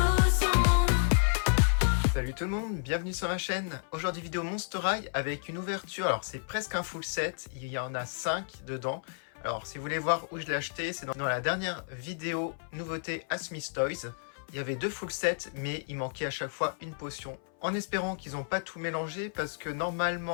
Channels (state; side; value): silent; right; 57 dB below the other